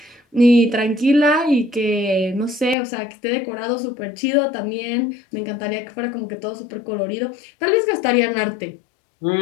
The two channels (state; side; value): drops out; right; at 2.8 s